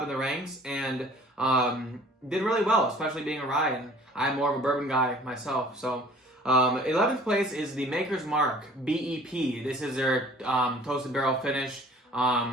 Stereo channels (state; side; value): normal; both; correlation 0.51